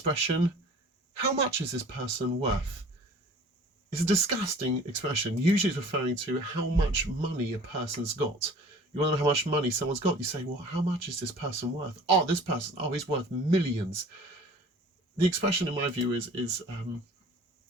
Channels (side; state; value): both; normal; correlation 0.47